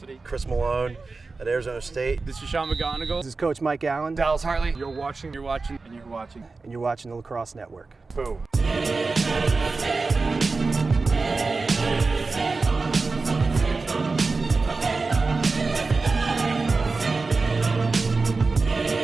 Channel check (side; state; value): left; quieter; 3.9 dB